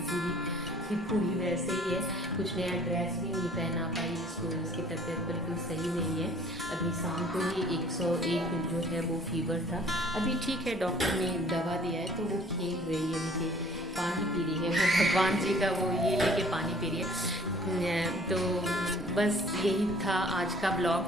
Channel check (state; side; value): normal; both; correlation 0.54